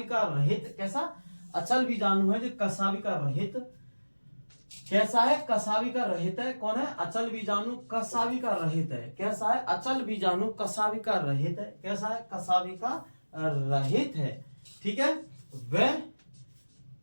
रहित। कैसा, अचल बीजाणु है जो कसाविका रहित। कैसा है, कसाविका रहित है। कौन है, अचल बीजाणु कसाविका रहित है। कैसा है, अचल बीजाणु कसाविका रहित है। कैसा है, कसाविका रहित है, ठीक है। वह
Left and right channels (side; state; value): both; inverted; correlation -1.00